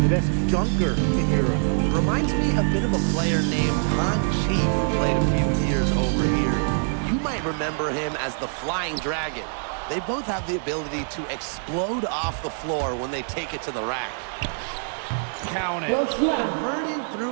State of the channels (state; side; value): silent; left; digital silence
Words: the best dunker in Europe. Reminds me a bit of a player named Han Chi who played a few years over here. You might remember him as the Flying Dragon. They both have the ability to explode off the floor when they take it to the rack. Count it. Converting